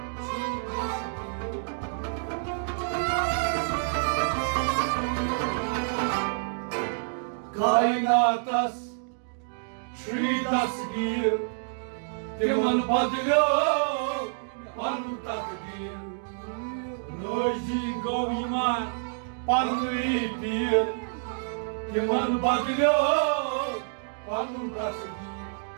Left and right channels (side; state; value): left; silent; digital silence